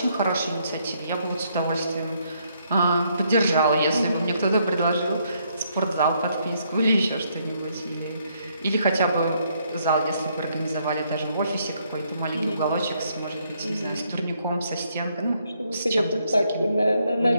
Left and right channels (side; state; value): both; inverted; correlation -0.72